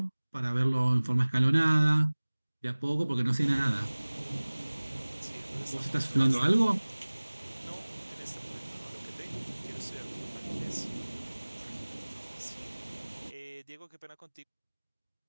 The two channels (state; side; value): inverted; both; correlation -1.00